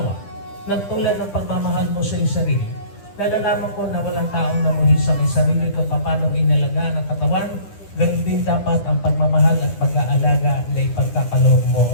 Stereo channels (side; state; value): right; late; 10 ms